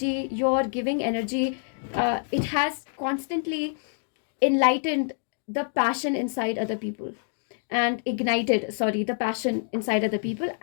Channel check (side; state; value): right; silent; digital silence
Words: your giving energy, it has constantly enlightened the passion inside other people, and ignited, the passion inside other people,